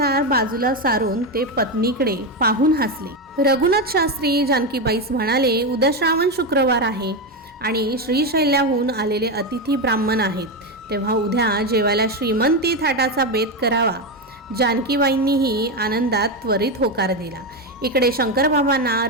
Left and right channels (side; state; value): both; normal; correlation 0.11